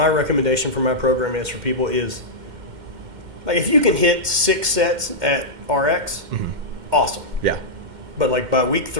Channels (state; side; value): late; left; 2.1 ms